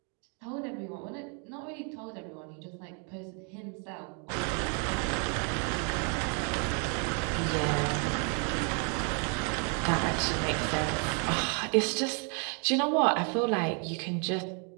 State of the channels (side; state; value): left; quieter; 39.1 dB